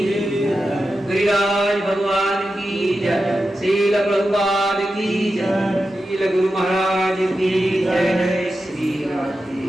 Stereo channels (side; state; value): both; normal; correlation 0.91